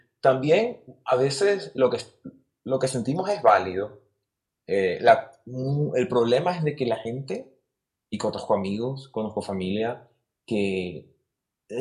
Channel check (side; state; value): both; identical; correlation 1.00